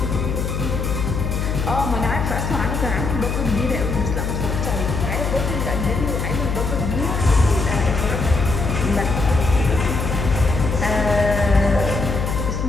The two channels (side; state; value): left; noise; hum, 2 dB below the sound